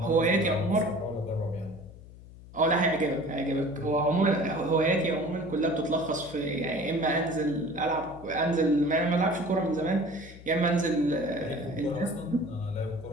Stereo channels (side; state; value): left; noise; hum, 18 dB below the sound